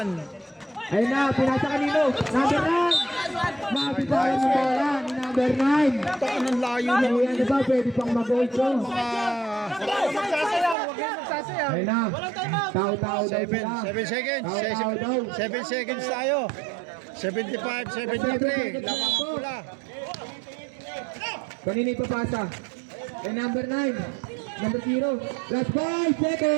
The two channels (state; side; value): drops out; left; at 10.8 s